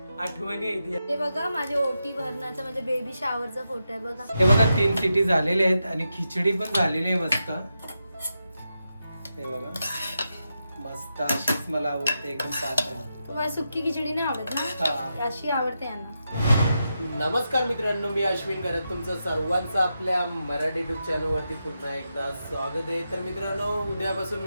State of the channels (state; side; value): inverted; both; correlation -0.87